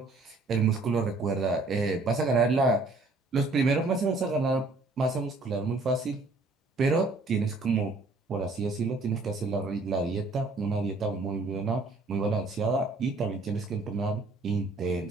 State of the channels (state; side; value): quieter; left; 3.3 dB